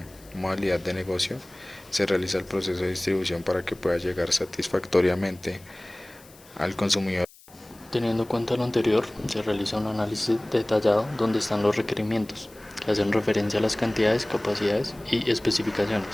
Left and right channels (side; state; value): left; noise; hiss, 24 dB below the sound